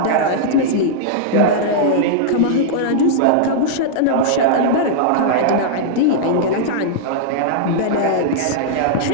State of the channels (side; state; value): both; different; correlation -0.02